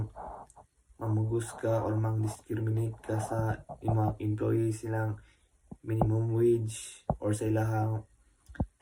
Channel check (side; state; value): both; identical; correlation 1.00